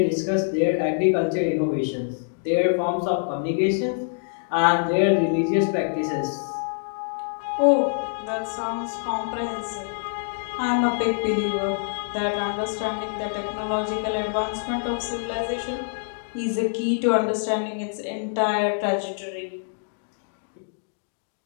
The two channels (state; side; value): silent; right; digital silence